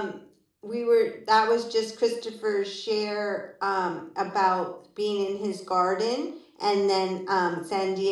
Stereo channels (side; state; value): both; identical; correlation 1.00